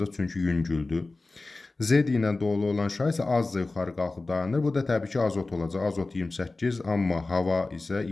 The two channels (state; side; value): quieter; right; 3.4 dB